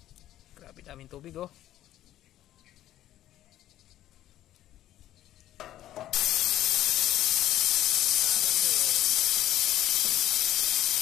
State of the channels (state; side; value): quieter; right; 13.1 dB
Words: Grabe daming tubig oh.